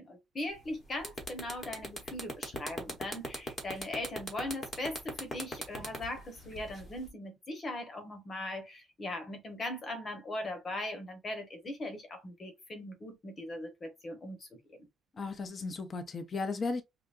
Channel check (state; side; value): normal; both; correlation 0.74